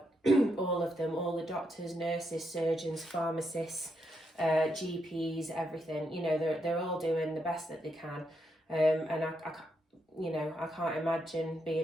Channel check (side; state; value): both; normal; correlation 0.80